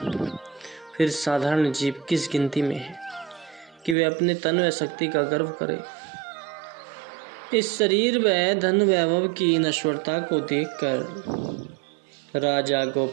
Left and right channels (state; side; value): drops out; left; at 4.0 s